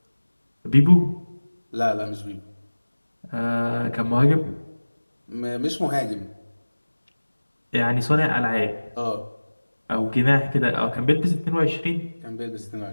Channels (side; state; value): both; inverted; correlation -1.00